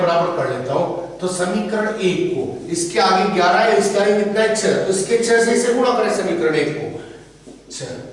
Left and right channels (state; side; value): identical; both; correlation 1.00